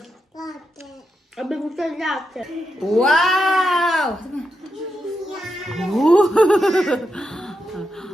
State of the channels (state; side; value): normal; both; correlation 0.85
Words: Abbiamo avuto il latte. Wow!